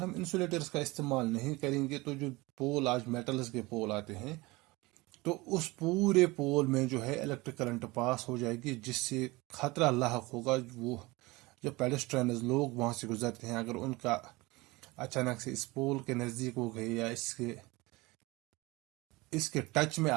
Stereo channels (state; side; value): quieter; left; 22.6 dB